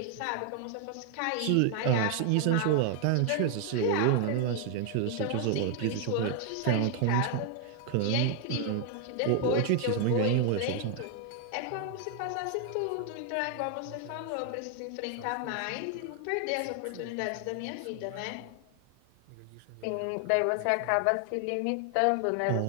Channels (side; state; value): both; different; correlation 0.00